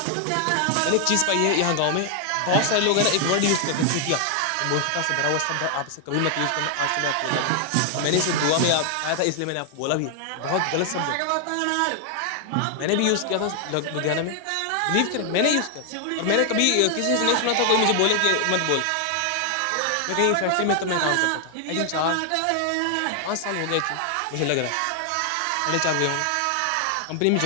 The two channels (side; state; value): both; different; correlation 0.00